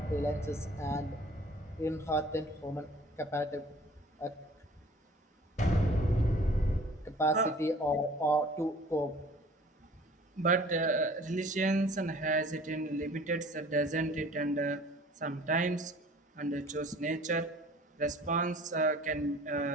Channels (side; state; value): both; normal; correlation 0.50